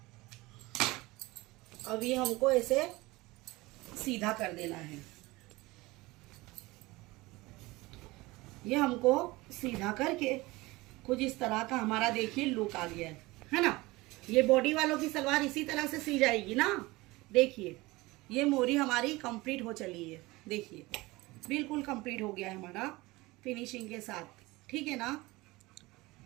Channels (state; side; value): quieter; left; 21.3 dB